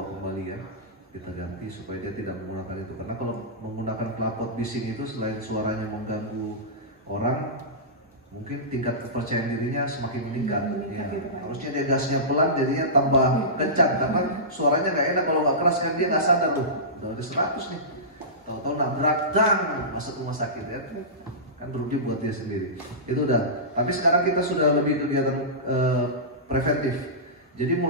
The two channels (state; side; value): normal; both; correlation -0.19